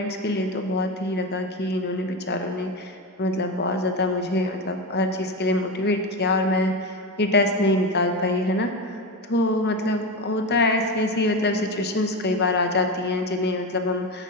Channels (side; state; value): both; normal; correlation 0.18